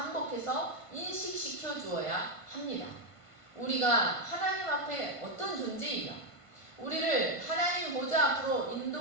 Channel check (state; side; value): late; right; 1.5 ms